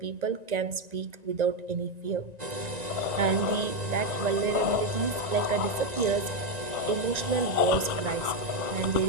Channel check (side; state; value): left; late; 1.9 ms